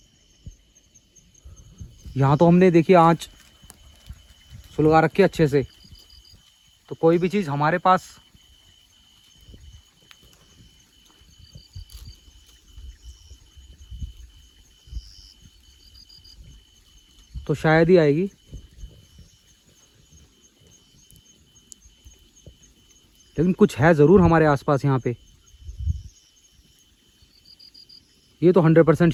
यहाँ तो हमने देखिए आँच सुलगा रखी है अच्छे से, तो कोई भी चीज़ हमारे पास तो शायद ही आएगी। लेकिन कुछ है ज़रूर हमारे आसपास यहाँ पे, ये तो 100%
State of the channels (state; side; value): identical; both; correlation 1.00